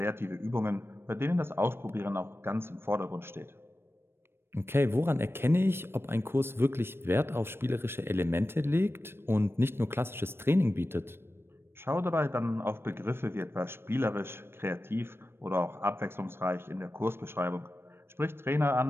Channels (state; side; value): late; left; 0.12 ms